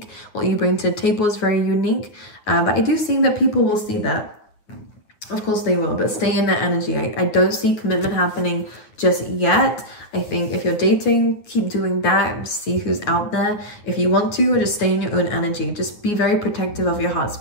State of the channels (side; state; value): right; late; 9.6 ms